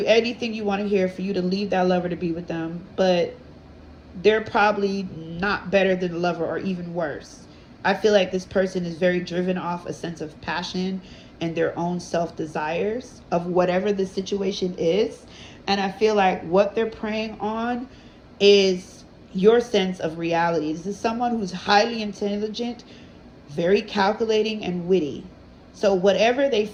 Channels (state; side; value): identical; both; correlation 1.00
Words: anything you want to hear for you to leave that lover to be with them, but they're probably not better than the lover or even worse. I feel like this person is very driven off a sense of passion and their own self-desires of whatever the situation is. And I feel like what they're preying on is your sense of reality. This is someone who's highly intelligent, very calculating, and witty. So whatever they